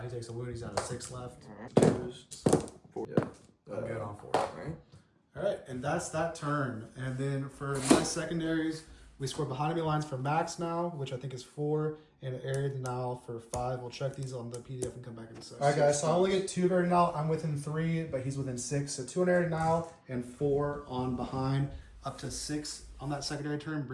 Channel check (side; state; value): both; identical; correlation 1.00